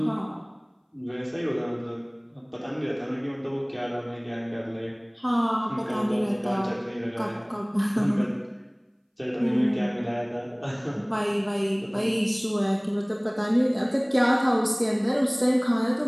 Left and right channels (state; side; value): identical; both; correlation 1.00